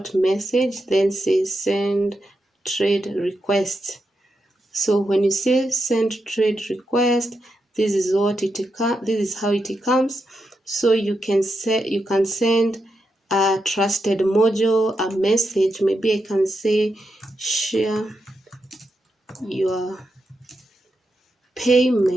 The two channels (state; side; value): normal; both; correlation 0.86